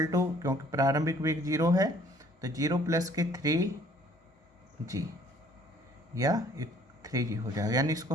टू, क्योंकि प्रारंभिक वेग 0 है तो 0 प्लस के 3g या 3g हो जाएगा, यानी इसको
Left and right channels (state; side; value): normal; both; correlation 0.58